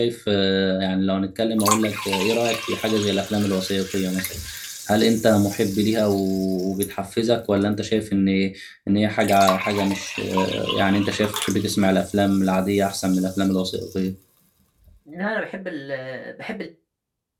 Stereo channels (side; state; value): both; identical; correlation 1.00